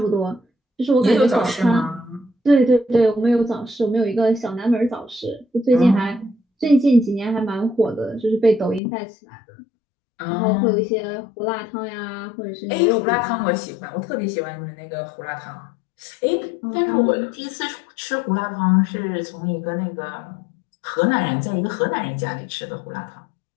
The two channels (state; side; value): drops out; right; at 8.8 s